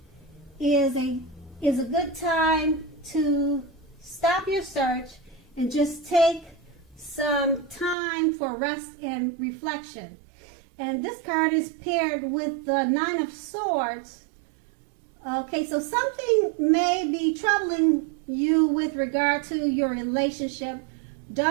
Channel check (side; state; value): left; drops out; at 8.0 s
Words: is a good time to stop your search and just take some time for rest and reflection. And this card is paired with the Nine of Swords. Okay, so something may be troubling you with regard to your relationship.